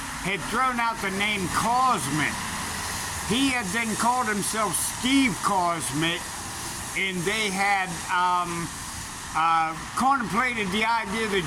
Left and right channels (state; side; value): identical; both; correlation 1.00